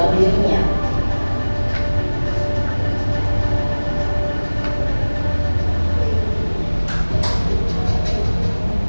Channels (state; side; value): inverted; both; correlation -1.00